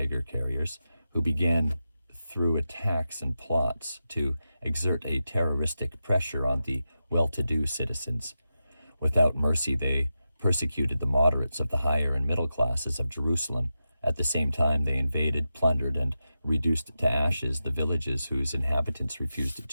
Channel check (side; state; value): both; inverted; correlation -0.90